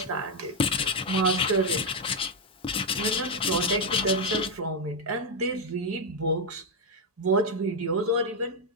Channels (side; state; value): both; normal; correlation 0.02